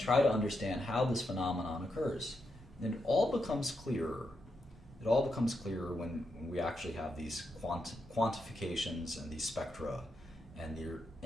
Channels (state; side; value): normal; both; correlation 0.83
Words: to understand how this phenomenon occurs. And it all becomes clearer. It all becomes clearer when we actually have these quantifications and these spectra,